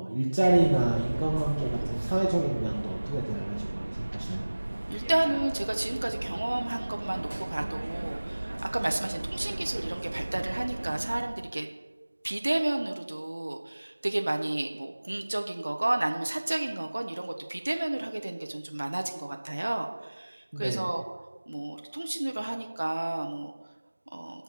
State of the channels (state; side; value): inverted; both; correlation -1.00